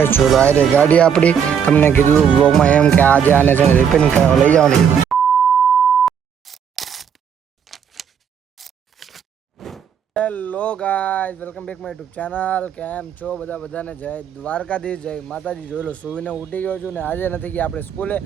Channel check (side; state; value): left; quieter; 7.7 dB